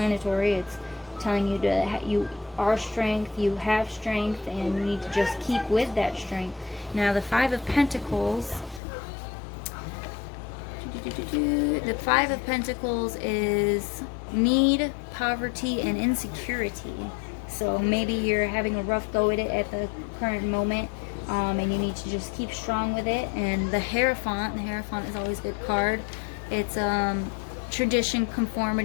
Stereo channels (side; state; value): right; drops out; at 8.8 s